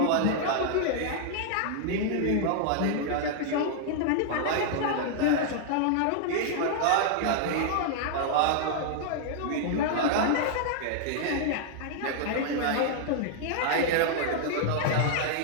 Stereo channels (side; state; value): both; different; correlation -0.01